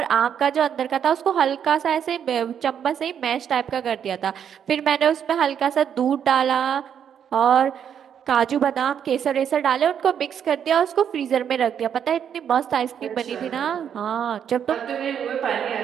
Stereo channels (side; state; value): left; quieter; 8.5 dB